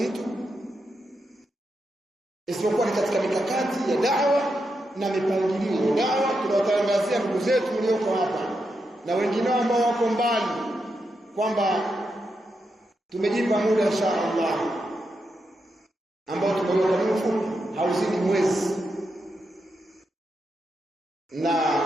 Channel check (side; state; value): both; normal; correlation 0.85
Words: isipokuwa ni katika mikakati ya da'wa na mipangilio ya da'wa. Tunawatangazia ndugu zetu walioko hapa na wengine ambao wako mbali kwamba tumejipa muda inshallah ambao tumeweka mfupi hauzidi mwezi, na